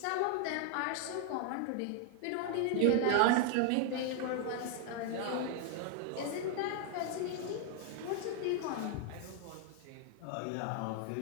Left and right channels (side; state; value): both; different; correlation 0.00